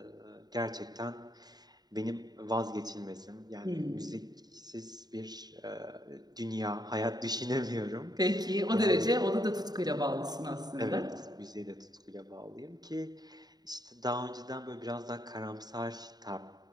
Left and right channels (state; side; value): late; left; 0.19 ms